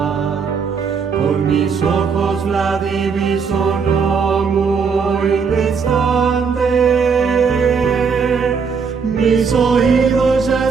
Con mis ojos la diviso no muy distante, mis oídos ya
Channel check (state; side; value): quieter; left; 5.8 dB